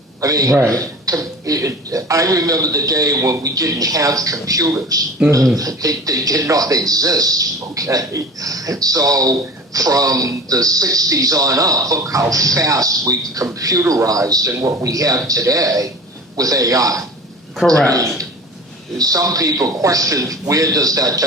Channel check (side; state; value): both; normal; correlation 0.37